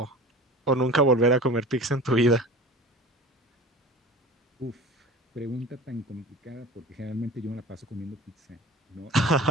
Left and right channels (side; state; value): both; normal; correlation 0.38